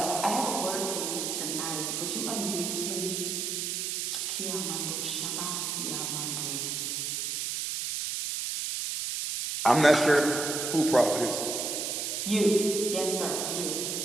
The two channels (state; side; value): noise; right; hiss, 2 dB below the sound